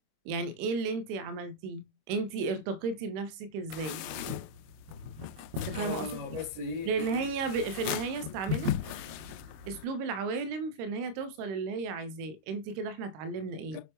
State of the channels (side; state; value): left; late; 26 ms